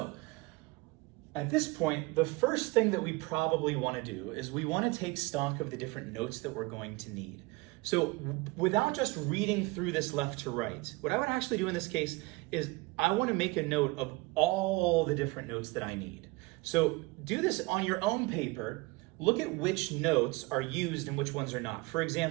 at this point, the first thing that we probably want to do is we want to take stock of the different notes that we're going to need. So without just reading through this left to right, what I would actually do in this case is I want to make a note of all the different notes that I need. So do this on your own paper. Look at which notes are used and which ones are not. For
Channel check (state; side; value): quieter; left; 23.9 dB